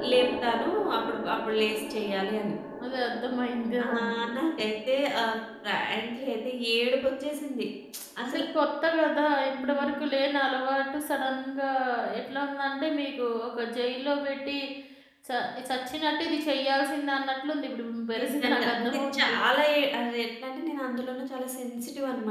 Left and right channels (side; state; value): both; identical; correlation 1.00